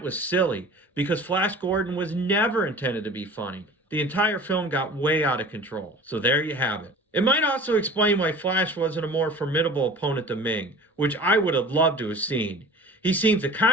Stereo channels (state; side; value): normal; both; correlation 0.41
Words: was silly, because Flash Gordon was never intended to be funny. The entire film got way out of control. So there you have it. It might also explain why Flash wasn't a more formidable opponent than Ming, which I would have loved to have seen. He seems to